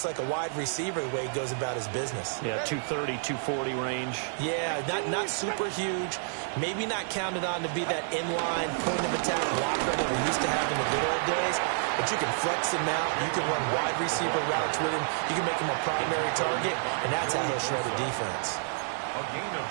like a wide receiver the way he goes about his business. Yeah, 230, 240 range. Yeah, not super huge. Maybe not counted on to be that inline point-of-attack blocker that we used to have in the good old days. But you can flex him out. You can run wide receiver routes with him. You can make him a primary target, and that's how he'll shred a defense. A gain of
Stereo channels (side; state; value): left; silent; digital silence